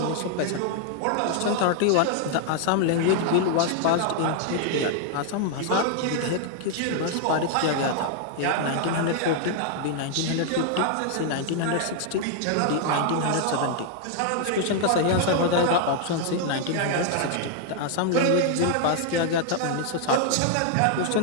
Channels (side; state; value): both; different; correlation 0.00